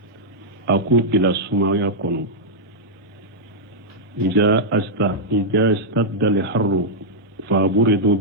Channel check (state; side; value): normal; both; correlation -0.07